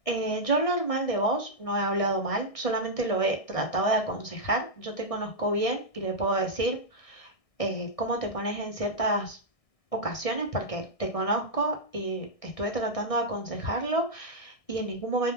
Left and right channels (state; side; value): late; right; 1.6 ms